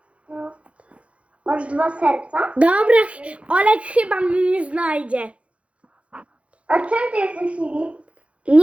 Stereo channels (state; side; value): late; left; 0.062 ms